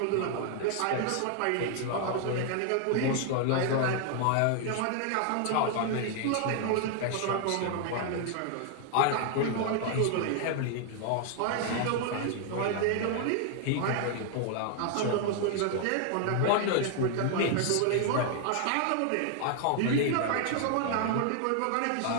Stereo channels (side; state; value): both; different; correlation 0.00